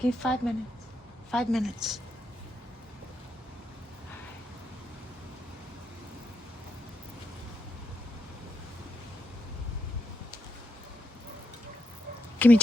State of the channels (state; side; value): normal; both; correlation 0.83